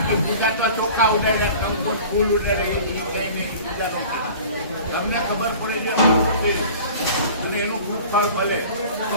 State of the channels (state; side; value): inverted; both; correlation -0.43